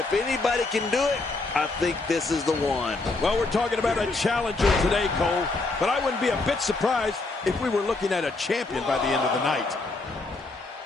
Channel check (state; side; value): quieter; right; 3.4 dB